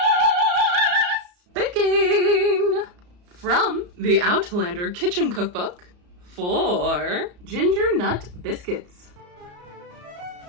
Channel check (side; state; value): left; late; 34 ms